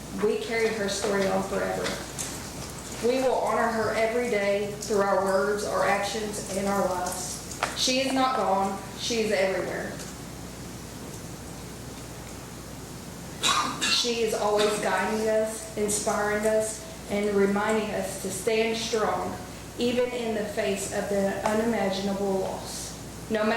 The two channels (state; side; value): identical; both; correlation 1.00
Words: We carry her story on forever. We will honor her every day through our words, our actions, and our lives. She is not gone. She is everywhere. She is always guiding us, inspiring us, and reminding us to stand strong, even in the face of the unimaginable loss. No